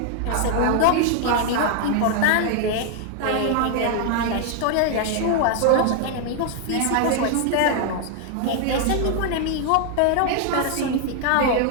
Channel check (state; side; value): different; both; correlation 0.00